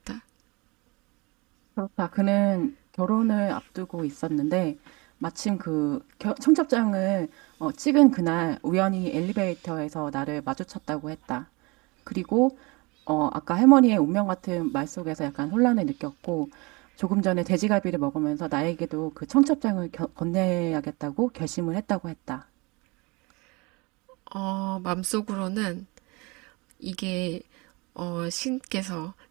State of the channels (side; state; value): left; quieter; 26.4 dB